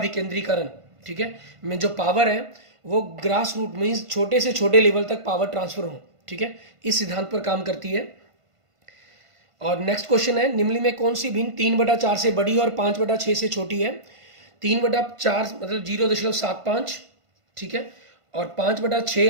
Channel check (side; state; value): left; late; 1.5 ms